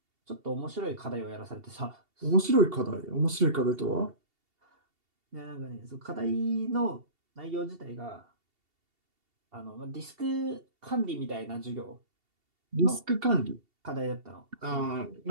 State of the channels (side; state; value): left; late; 2.7 ms